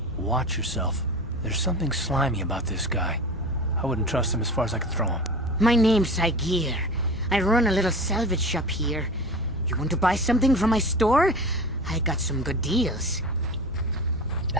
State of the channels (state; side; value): normal; both; correlation 0.33